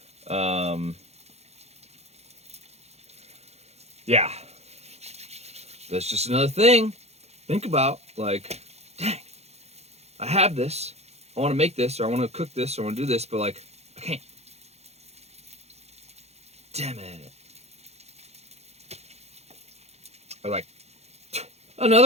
Yeah. That's just another thing. Think about, like, dang, I have this. I want to make this, or I want to cook this, or I want to do this, but, like, I can't. Damn it. Or like,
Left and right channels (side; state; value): left; late; 0.31 ms